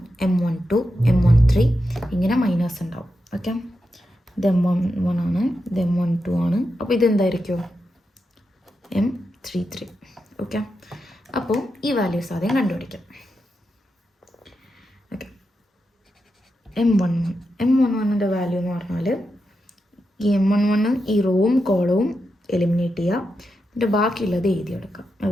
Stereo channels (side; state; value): both; normal; correlation 0.87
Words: M12 M13 ഇങ്ങനെ മൈനേഴ്സ് ഉണ്ടാവും. ഓക്കെ, ഇത് M11 ആണ്, ഇത് M12 ആണ്, അപ്പോൾ ഇതെന്തായിരിക്കും? M33. ഓക്കെ, അപ്പോൾ ഈ വാല്യൂസ് ആദ്യം കണ്ടുപിടിക്കാം. ഓക്കെ, M11ൻ്റെ വാല്യൂ എന്ന് പറഞ്ഞാൽ ഈ M11 ഈ റോവും കോളവും എലിമിനേറ്റ് ചെയ്യുക, എന്നിട്ട് ബാക്കിയുള്ളത് എഴുതിയെടുക്കാം.